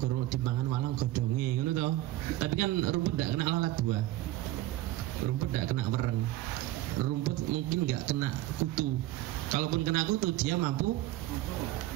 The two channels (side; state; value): left; quieter; 15.9 dB